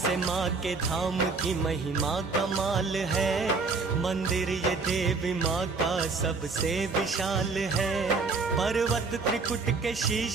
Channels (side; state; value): left; quieter; 4.3 dB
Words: माँ के धाम की महिमा कमाल है। मंदिर ये देवी माँ का सबसे विशाल है। पर्वत त्रिकुट के